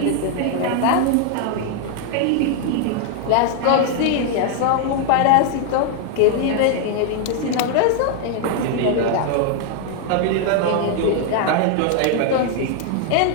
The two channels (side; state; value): both; different; correlation 0.00